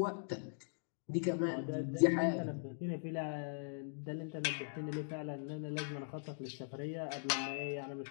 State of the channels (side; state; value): right; silent; digital silence